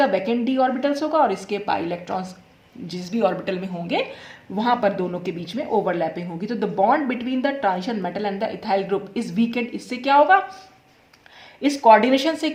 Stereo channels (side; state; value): both; identical; correlation 1.00